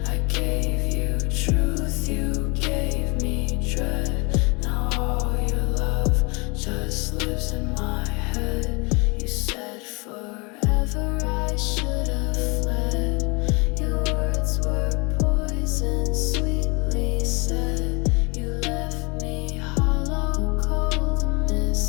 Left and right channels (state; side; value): quieter; right; 29.1 dB